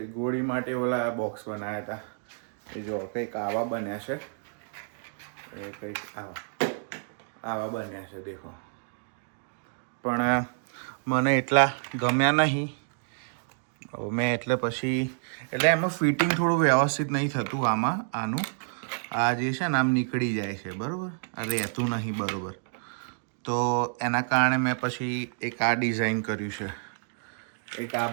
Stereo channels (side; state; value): left; silent; digital silence